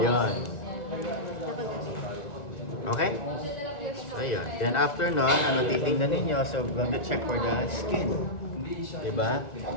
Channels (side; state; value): right; late; 1.6 ms